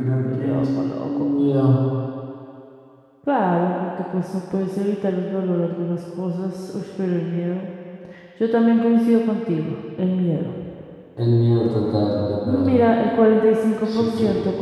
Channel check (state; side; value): identical; both; correlation 1.00